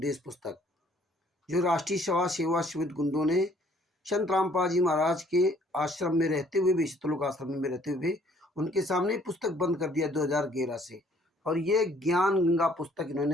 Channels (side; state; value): both; normal; correlation 0.61